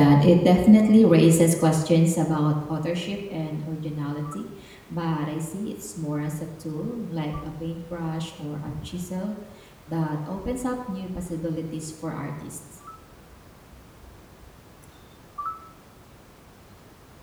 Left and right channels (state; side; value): identical; both; correlation 1.00